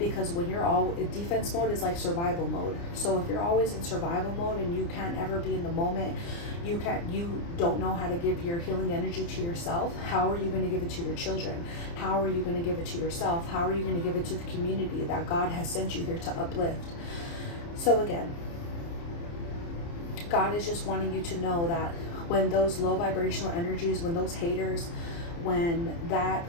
when you're all defense mode is like survival mode. So if you're always in survival mode and you can't ever be in the moment, you don't know how to give your healing energy to yourself. How are you going to give it to your children? How are you going to give it to yourself? How are you going to give it to the community that God has sent you here to uplift? So again, God is just wanting you to know that when those low vibrational energies, when those haters, when that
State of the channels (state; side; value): late; right; 29 ms